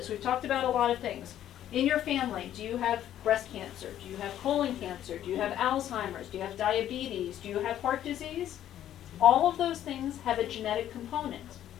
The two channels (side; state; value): right; quieter; 11.5 dB